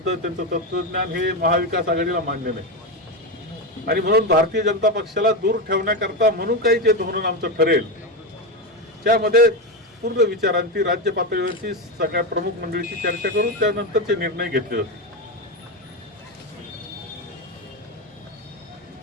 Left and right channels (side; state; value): both; normal; correlation 0.13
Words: त्यांचं तत्वज्ञान हे महाविकास आघाडीला मान्य नाही. आणि म्हणून भारतीय जनता पक्षाला दूर ठेवण्याकरता म्हणून काही जे धोरण आमचं ठरेल त्यामध्ये पूर्ण विचारांती राज्य पातळीवरची सगळ्या प्रमुख मंडळीची चर्चा करून त्यानंतरचे निर्णय घेतले जातील.